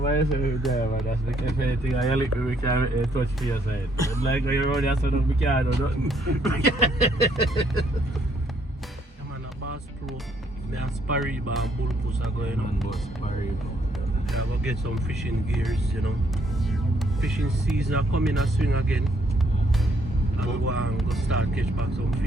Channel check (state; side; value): normal; both; correlation 0.69